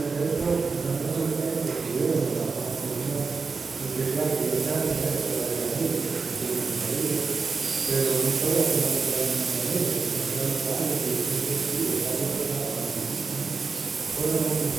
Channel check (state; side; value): quieter; left; 4.7 dB